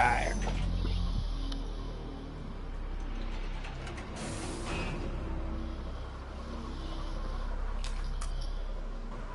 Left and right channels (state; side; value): identical; both; correlation 1.00